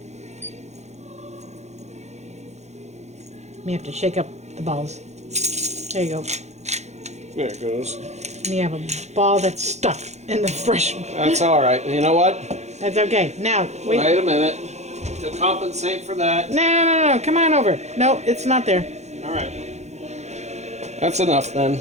You have to shake up the balls. There you go. There it goes. And you have a ball that's stuck in the fresh. That's all right. You know what? That's okay. Now, wait. Wait a minute. To compensate for that. No. Come on over. No, it's not there. All right. That's enough then.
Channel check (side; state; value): left; late; 0.33 ms